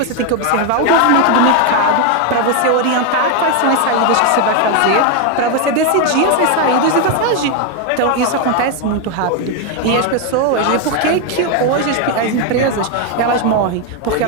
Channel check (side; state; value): both; different; correlation 0.01